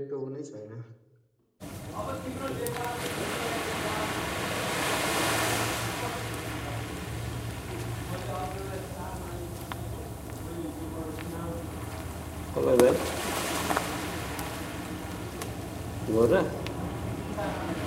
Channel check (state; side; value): identical; both; correlation 1.00